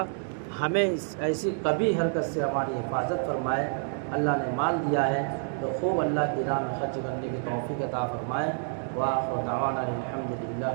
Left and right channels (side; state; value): left; silent; 59 dB below the other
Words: ہمیں ایسی کبھی حرکت سے ہماری حفاظت فرمائے. اللہ نے مال دیا ہے تو خوب اللہ کی راہ میں خرچ کرنے کی توفیق عطا فرمائے. وآخر دعوانا الحمد للہ